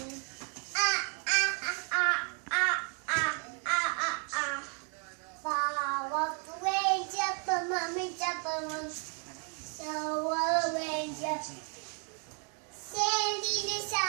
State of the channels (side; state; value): left; quieter; 39.5 dB